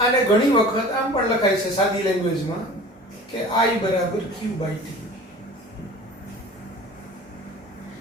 ઘણી વખત આમ પણ લખાય છે સાદી લેંગ્વેજમાં કે I બરાબર Q બાય T.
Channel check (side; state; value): both; normal; correlation 0.42